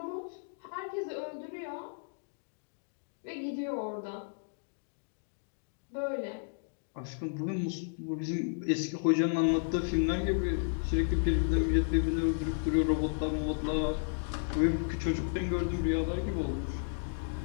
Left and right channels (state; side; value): silent; right; digital silence